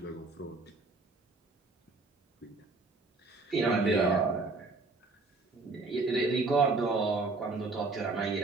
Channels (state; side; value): quieter; left; 3.6 dB